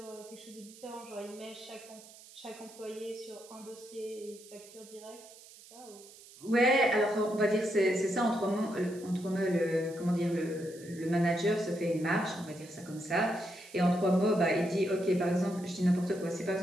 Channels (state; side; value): noise; right; hiss, 20 dB below the sound